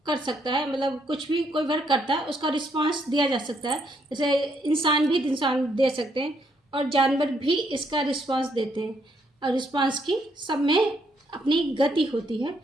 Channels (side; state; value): both; normal; correlation 0.72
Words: कर सकता है, मतलब कुछ भी कोई वर्क करता है उसका रिस्पॉन्स दिया जा सकता है, जैसे इंसान भी दे सकते हैं और जानवर भी इसका रिस्पॉन्स देते हैं और रिस्पॉन्स की सब में अपनी गति होती है,